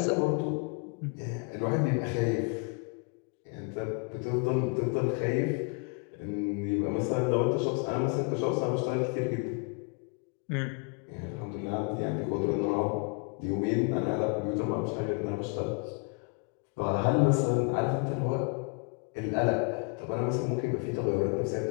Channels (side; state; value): right; quieter; 36.2 dB